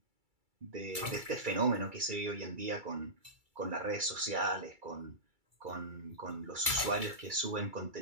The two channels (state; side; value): late; left; 2.3 ms